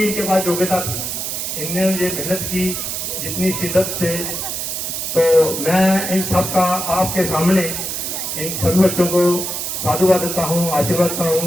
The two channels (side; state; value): right; noise; hiss, 3 dB below the sound